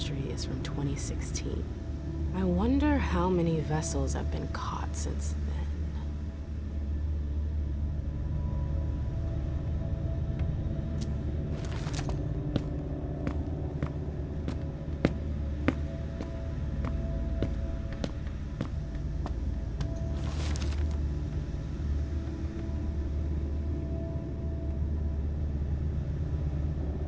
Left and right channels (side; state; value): both; identical; correlation 1.00